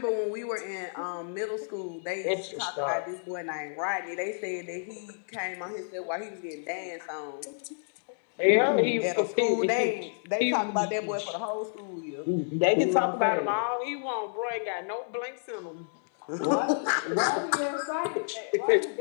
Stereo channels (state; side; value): silent; right; digital silence